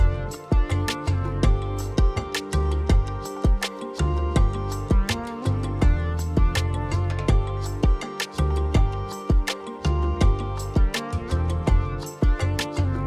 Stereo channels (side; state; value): both; identical; correlation 1.00